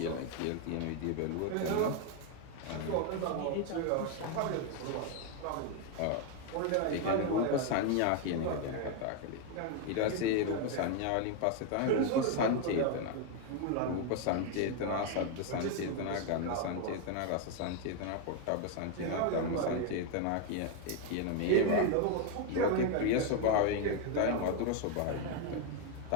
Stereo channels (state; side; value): different; both; correlation 0.01